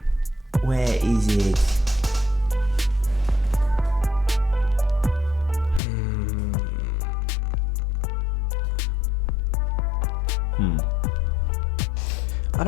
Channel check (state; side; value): drops out; right; at 5.8 s